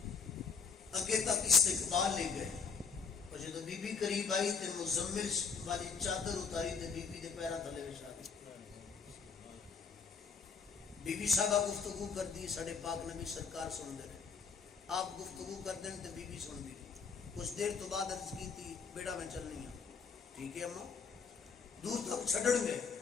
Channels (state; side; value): quieter; right; 5.8 dB